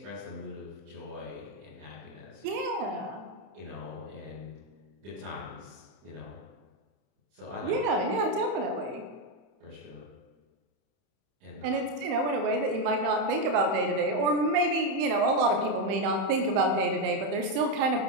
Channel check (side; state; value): left; late; 31 ms